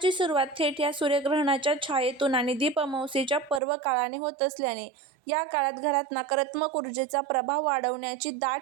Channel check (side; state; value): left; drops out; at 3.6 s